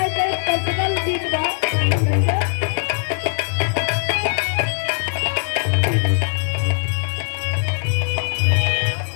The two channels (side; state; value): right; silent; digital silence